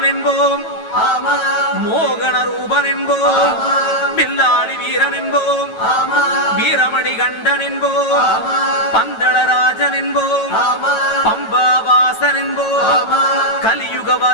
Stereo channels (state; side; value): late; right; 9.1 ms